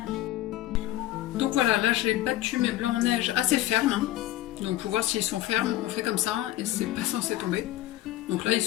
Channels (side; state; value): right; quieter; 14.8 dB